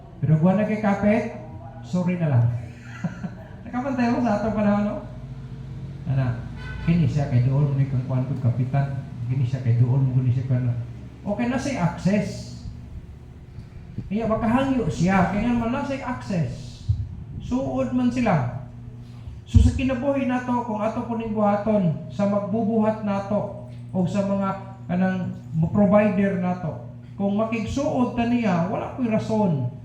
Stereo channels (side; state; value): both; identical; correlation 1.00